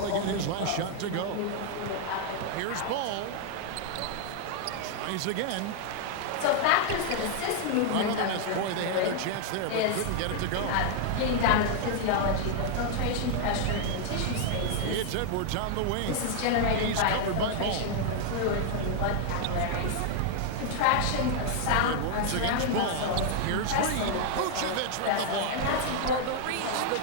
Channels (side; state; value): both; different; correlation 0.00